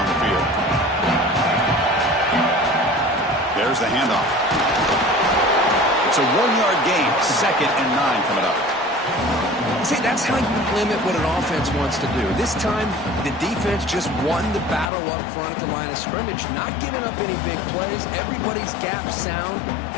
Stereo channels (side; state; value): right; drops out; at 14.9 s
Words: the field. There's the handoff. It's a 1-yard gain. 2nd and 9 coming up. See, that's how you limit what an offense wants to do. This time, the defense just won the battle up front at the line of scrimmage, not giving up any big plays. Everybody's gap sound.